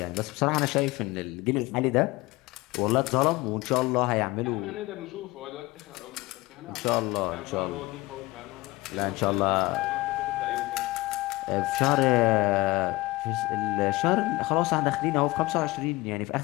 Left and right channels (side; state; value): right; quieter; 20.8 dB